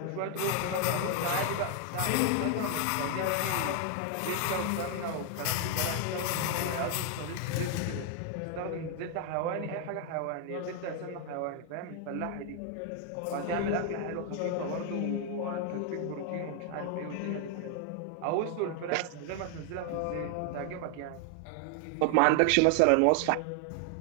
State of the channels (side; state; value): both; different; correlation 0.00